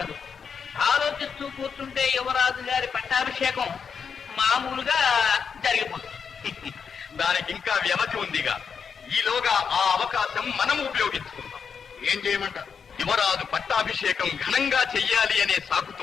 ఆలోచిస్తూ కూర్చుంటే యువరాజు గారి పట్టాభిషేకం మామూలుగా జరిగిపోతుంది. దానికి ఇంకా వ్యవధి ఉందిగా. ఈలోగా ఆ అవకాశం మనం ఉపయోగించుకుందాం. ఏం చేయమంటారు? యువరాజు పట్టాభిషేకం ఘనంగా చెయ్యాలి అనే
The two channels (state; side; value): quieter; right; 6.4 dB